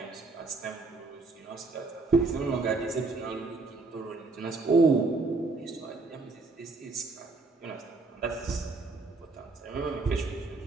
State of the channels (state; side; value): quieter; left; 3.7 dB